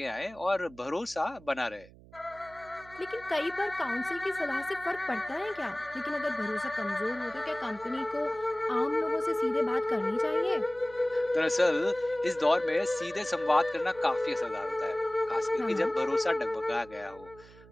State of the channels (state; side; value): noise; right; hum, 22 dB below the sound